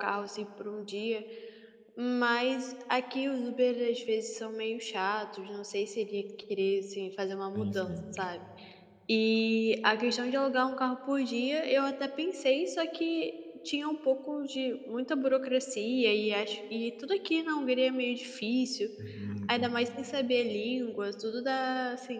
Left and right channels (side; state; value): both; identical; correlation 1.00